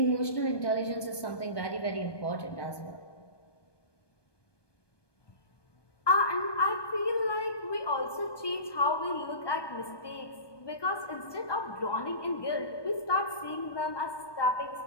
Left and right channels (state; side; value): late; right; 1.2 ms